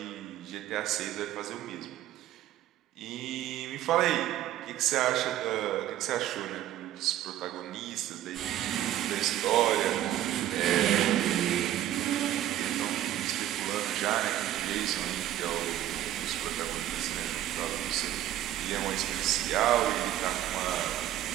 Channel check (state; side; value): quieter; left; 12.9 dB